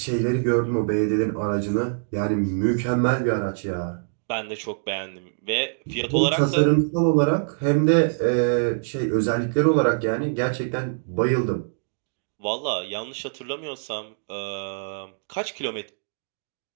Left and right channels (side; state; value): left; silent; digital silence